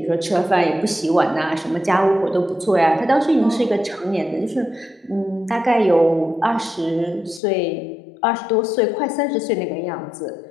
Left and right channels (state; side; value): drops out; right; at 7.4 s